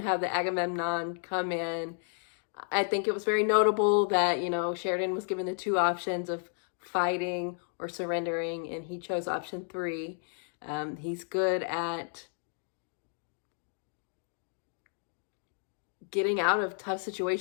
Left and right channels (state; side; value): silent; right; 56 dB below the other